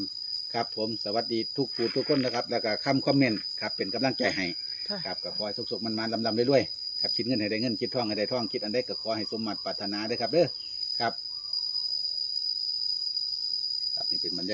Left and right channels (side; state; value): both; identical; correlation 1.00